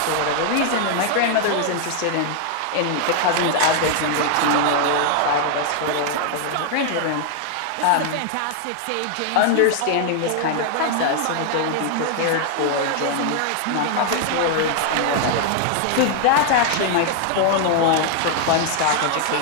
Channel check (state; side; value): different; both; correlation 0.00